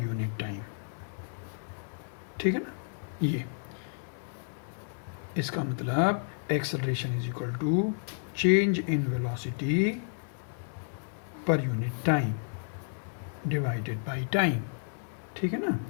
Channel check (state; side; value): silent; right; digital silence